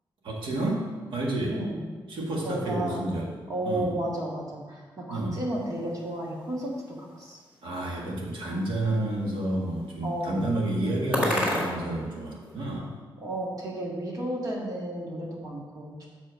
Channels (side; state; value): both; normal; correlation 0.70